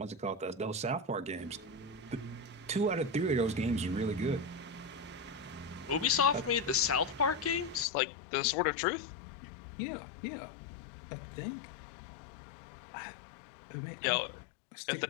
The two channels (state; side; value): drops out; right; at 7.9 s